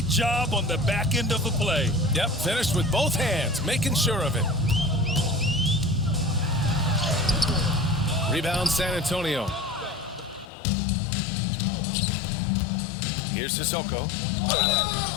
job on the back end of the play. Yep, finished with both hands, making sure of it. Rebound San Antonio. Here's Sissoko.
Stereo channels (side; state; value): right; drops out; at 10.5 s